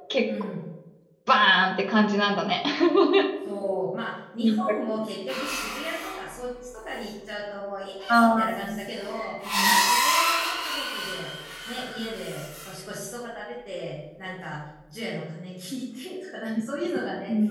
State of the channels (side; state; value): both; identical; correlation 1.00